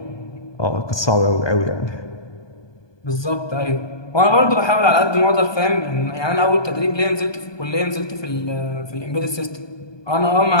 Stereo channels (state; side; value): late; right; 1.2 ms